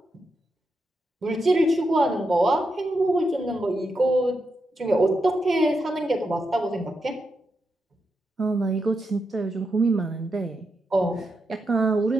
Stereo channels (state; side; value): normal; both; correlation 0.85